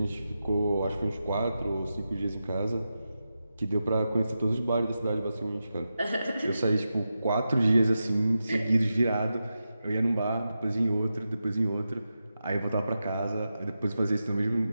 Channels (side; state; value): both; inverted; correlation -0.90